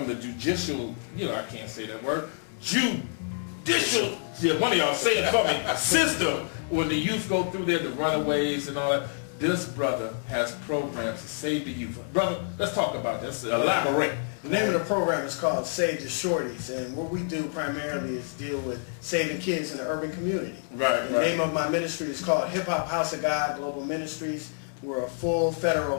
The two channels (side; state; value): right; silent; digital silence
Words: the judicial, I can't say that word, judicial, one of y'all say it for me, system, when the youth go through there, the runaways and all that, this brother has programs to save the youth. Brother, let's talk about this. Elaborate. The name of the program is called Save the Shorties, and what we do primarily is deal with saving kids in the urban community. Right, The name of my ministry is called Hip Hop House of God Global Ministries. We're a full federal